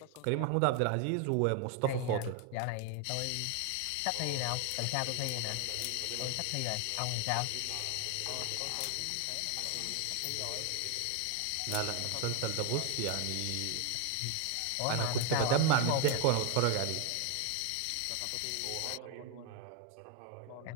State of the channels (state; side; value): different; both; correlation 0.00